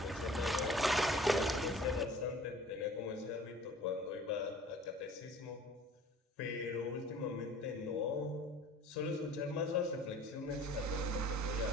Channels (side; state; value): both; normal; correlation 0.48